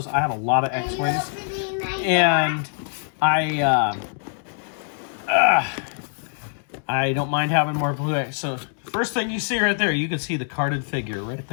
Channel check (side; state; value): right; silent; digital silence